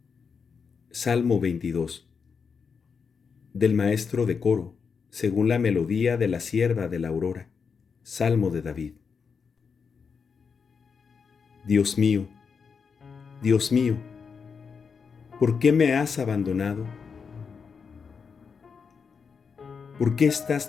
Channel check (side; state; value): right; quieter; 5.8 dB